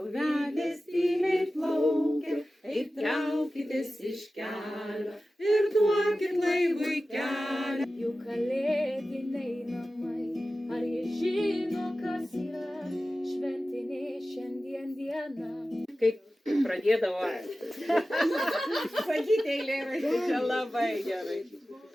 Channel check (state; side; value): normal; both; correlation 0.95